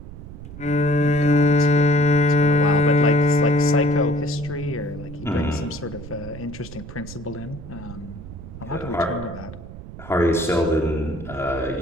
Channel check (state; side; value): noise; right; rumble, 13 dB below the sound